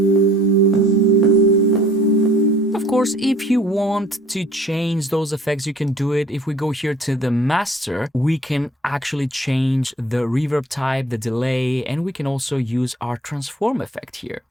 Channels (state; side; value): normal; both; correlation 0.52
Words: Of course, if you want to change those effects, you can do it. If we go here to the master, we can actually change the reverb type, the delay, and we can also use our transform effect here.